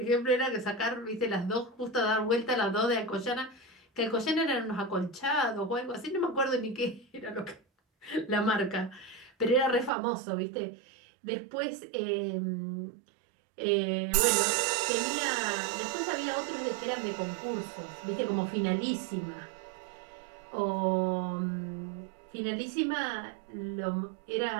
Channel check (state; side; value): drops out; left; at 9.9 s